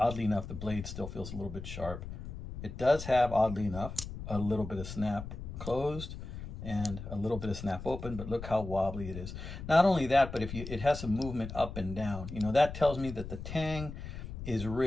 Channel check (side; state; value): left; noise; rumble, 9 dB below the sound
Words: enough, the blade still feels a little bit sharp. It does have, oddly enough, a little bit of snap closed and a little bit of snap open, but look how wobbly it is. Not only that, but if it has some movement up and down, you know, that tells me that the tang is